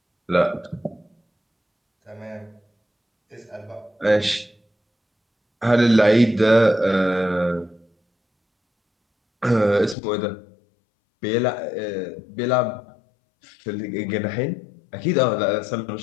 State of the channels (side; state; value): right; drops out; at 10.0 s